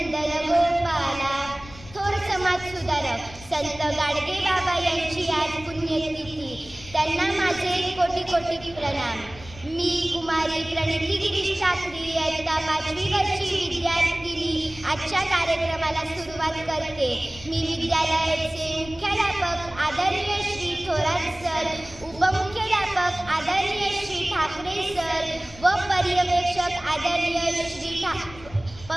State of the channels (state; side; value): noise; left; rumble, 18 dB below the sound